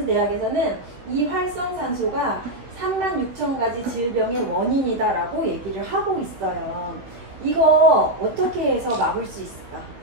대학에서는 이 활성산소가 36,000가지 질병의 원인이다라고 얘기를 하고 있어요. 이거 어떻게 해서 막을 수 있을까?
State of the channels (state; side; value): late; left; 16 ms